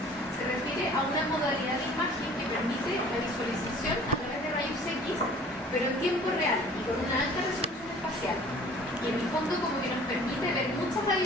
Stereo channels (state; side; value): normal; both; correlation 0.50